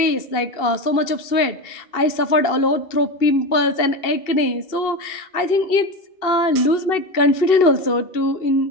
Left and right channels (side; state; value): right; late; 2.7 ms